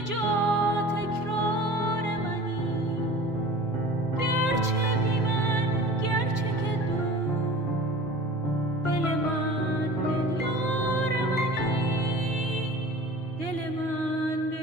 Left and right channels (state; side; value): normal; both; correlation 0.41